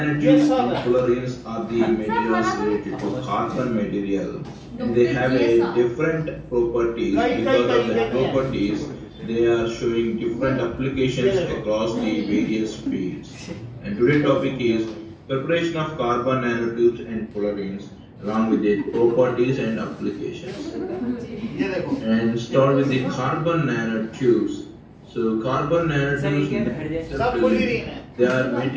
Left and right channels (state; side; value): identical; both; correlation 1.00